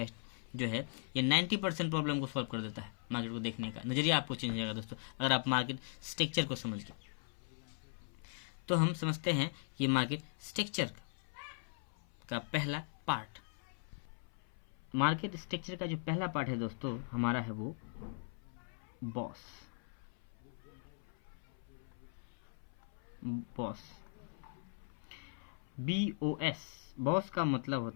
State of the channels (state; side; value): silent; right; 51 dB below the other